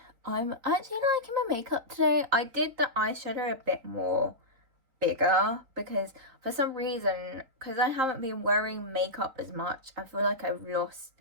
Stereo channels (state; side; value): late; left; 3.9 ms